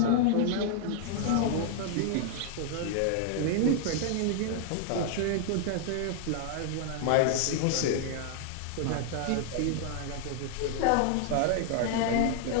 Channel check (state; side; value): different; both; correlation 0.00